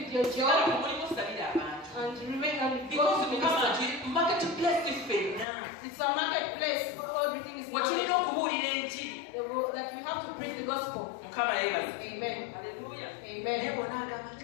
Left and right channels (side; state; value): right; drops out; at 5.5 s